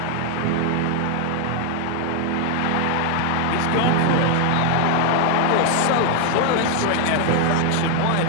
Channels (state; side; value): different; both; correlation 0.00